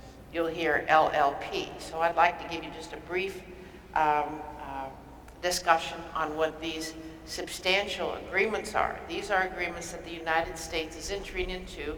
You'll hear LLP. So I'd like to give you just a brief discussion on what these substantial agreements are. These are agreements that the United States is entering into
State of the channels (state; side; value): identical; both; correlation 1.00